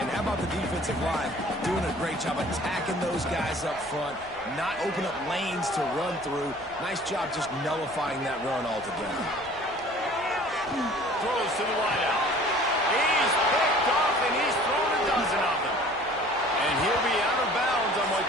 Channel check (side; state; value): left; noise; rumble, 25 dB below the sound